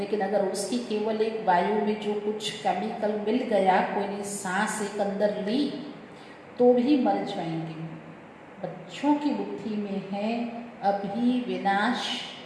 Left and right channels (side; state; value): both; identical; correlation 1.00